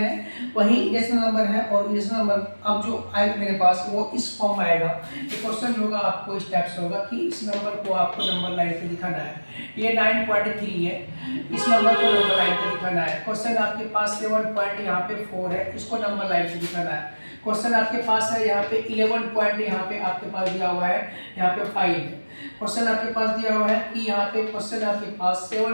वही इरेशनल नंबर है, और इरेशनल नंबर अब जो आएगा मेरे पास वो इस फॉर्म में आएगा। ये क्वेश्चन होगा आपको इस टाइप से होगा कि इस नंबर को आपको नंबर लाइन पे दिखाना है। ये 9.3 है, इस नंबर को नंबर लाइन पे दिखाना है। क्वेश्चन आपके पास 7 पॉइंट यहाँ पे 4 है, इसको नंबर लाइन पे दिखाना है। क्वेश्चन आपके पास है यहाँ पे 11 पॉइंट यहाँ पे आपके पास दिया हुआ है, यहाँ पे 5 है। क्वेश्चन आपके पास दिया हुआ है कि यहाँ पे क्वेश्चन आपके पास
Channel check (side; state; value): both; inverted; correlation -1.00